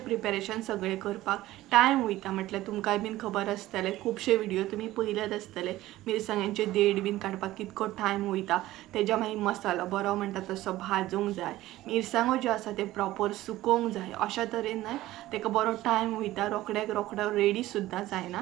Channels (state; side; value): quieter; left; 16.1 dB